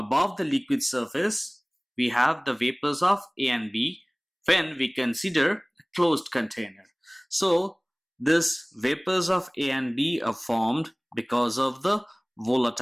the liquid surface we have the vapors of A and B when we consider a closed container. So these vapors of A and B are formed because of the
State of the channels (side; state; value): both; identical; correlation 1.00